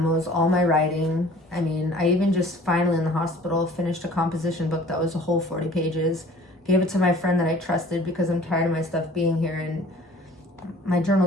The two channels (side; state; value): both; normal; correlation 0.50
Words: all my writing. I mean, I even just finally in the hospital finished a composition book that was a whole 40 pages. Gave it to my friend that I trusted because I'm tired of my stuff being here, and my